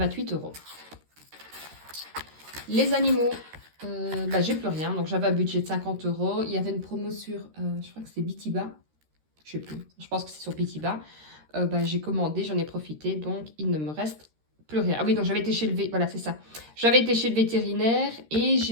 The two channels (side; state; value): left; late; 13 ms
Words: euros. Les animaux, j'ai plus rien. Donc j'avais un budget de 50 euros. Il y avait une promo sur, je crois que c'est Bitiba. Je sais plus. Je pense que c'est sur Bitiba. J'ai commandé, j'en ai profité. Donc il ne me reste plus rien. Ah oui, donc j'avais été chez le voilà, c'est ça. J'avais été chez le vétérinaire et